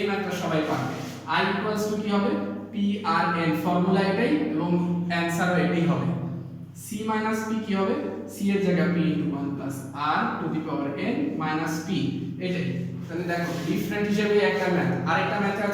ম্যাথটা সবাই পারবে। i = কি হবে, p r n, ফর্মুলা এটাই এবং অ্যানসারও এটাই হবে। c - p কি হবে, c এর জায়গায় p * 1 + r to the power n - p, এটাই। তাহলে দেখো ডিফারেন্ট হিসেবে একটা ম্যাথ। আরেকটা ম্যাথ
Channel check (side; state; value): both; identical; correlation 1.00